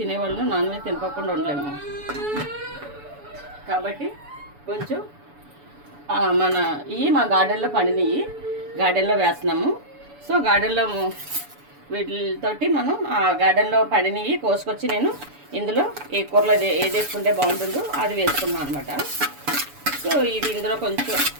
నాన్ వెజ్ తినకోకుండా ఉండలేము. కాబట్టి కొంచెం మన మా గార్డెన్లో పండినవి గార్డెన్లో వేస్తున్నాము. సో గార్డెన్లో వీటితోటి మనం ఆ గార్డెన్లో పండినవి కోసుకొచ్చి నేను ఇందులో ఏ కూరలో ఏది వేసుకుంటే బాగుంటుందో అది వేసుకున్నాను అనమాట. సో ఇది ఇందులో కొంచెం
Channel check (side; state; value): left; late; 7.0 ms